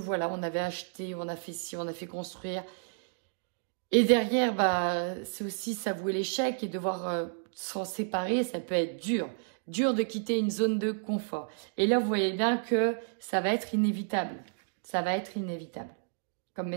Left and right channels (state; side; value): silent; left; digital silence